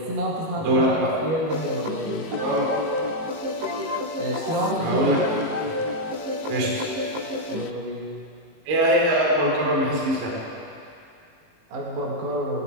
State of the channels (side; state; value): left; late; 19 ms